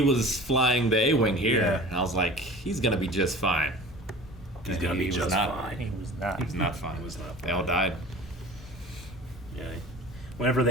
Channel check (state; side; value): normal; both; correlation 0.40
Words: was flying the A-wing here, Yeah. and I was like, he's gonna be just fine. He's And gonna he be was just not. fine. He was not. He was not fine. He was not They all died. Yeah. Whenever